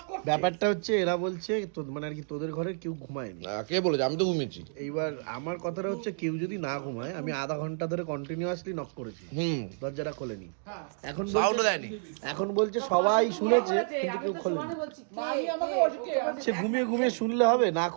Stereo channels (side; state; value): left; silent; digital silence